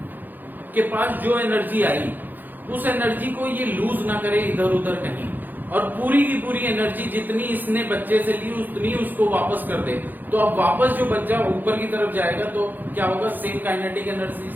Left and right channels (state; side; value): late; left; 0.087 ms